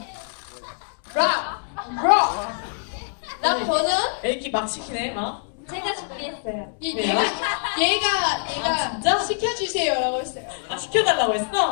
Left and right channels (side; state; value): right; silent; 61 dB below the other